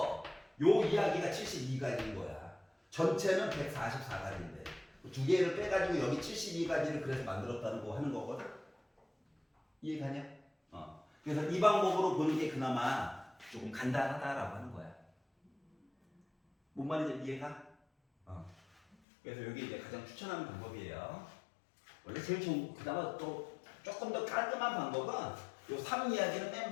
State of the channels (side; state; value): right; drops out; at 18.9 s